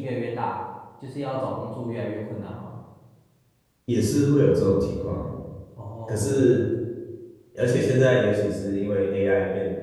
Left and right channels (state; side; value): identical; both; correlation 1.00